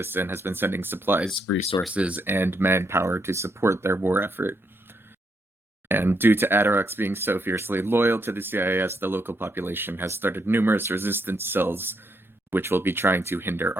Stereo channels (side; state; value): both; normal; correlation 0.77